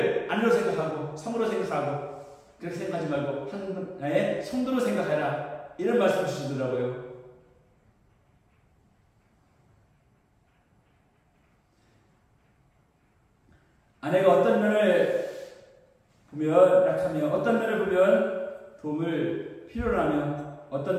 아내로 생각하고 성으로 생각하고 그렇게 생각하지 말고 하나의 성도로 생각해라. 이런 말씀 주시더라고요. 아내가 어떤 면을 보면 약하며 어떤 면을 보면 도움을 필요로 하며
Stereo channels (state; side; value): identical; both; correlation 1.00